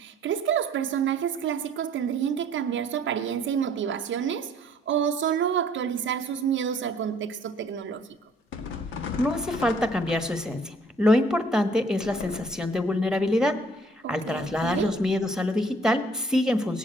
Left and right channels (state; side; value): normal; both; correlation 0.59